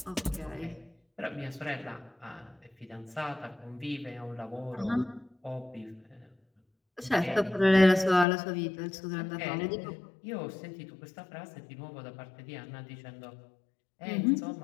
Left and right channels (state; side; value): drops out; right; at 8.2 s